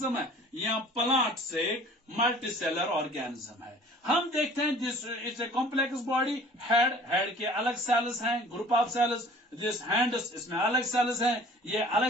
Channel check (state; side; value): normal; both; correlation 0.49